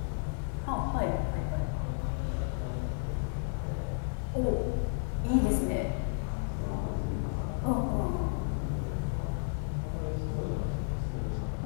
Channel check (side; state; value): right; silent; digital silence